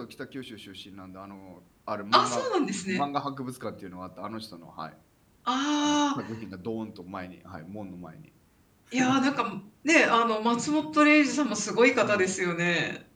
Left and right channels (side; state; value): both; identical; correlation 1.00